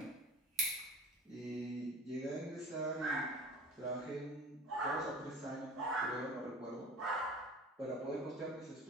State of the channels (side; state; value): both; normal; correlation 0.40